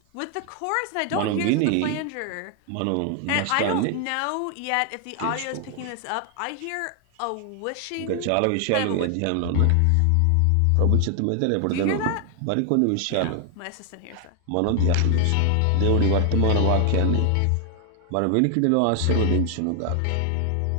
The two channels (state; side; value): different; both; correlation 0.00